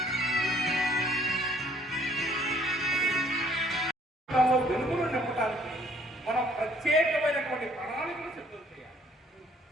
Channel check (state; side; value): normal; both; correlation 0.61